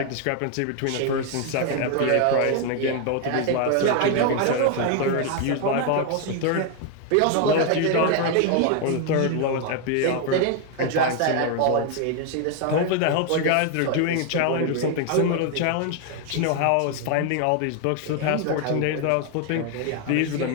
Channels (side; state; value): both; different; correlation 0.01